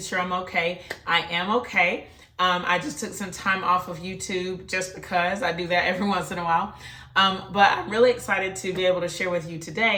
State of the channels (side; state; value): both; identical; correlation 1.00